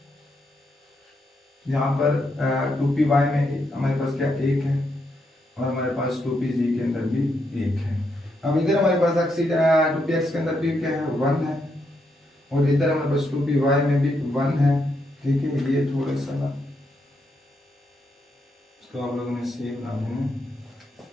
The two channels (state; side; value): normal; both; correlation 0.80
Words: यहाँ पर 2py में हमारे पास क्या 1 है और हमारे पास 2pz के अंदर भी 1 है। अब इधर हमारे पास ऑक्सीजन 2px के अंदर भी क्या है 1 है और इधर हमारे पास 2py में भी 1 है, ठीक है। ये थोड़ा सा ना इसको आप लोगों ने सेव ना देना,